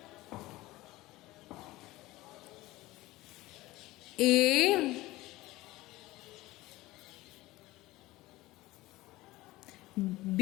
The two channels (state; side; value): quieter; right; 18.6 dB